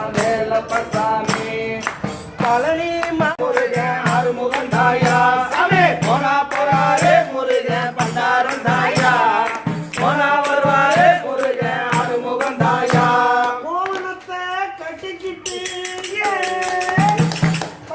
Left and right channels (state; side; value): identical; both; correlation 1.00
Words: வேலப்பசாமி பழனி முருகன் ஆறுமுகன் தாயா சாமி போனா போறாரு முருகன் பண்டாரம் தாயா போனா வருவாரு முருகன் ஆறுமுகன் தாயா கோவணத்தை கட்டிக்கிட்டு